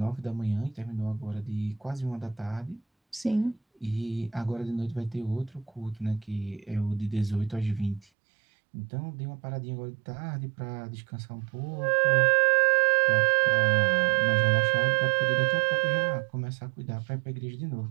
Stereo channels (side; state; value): left; drops out; at 8.1 s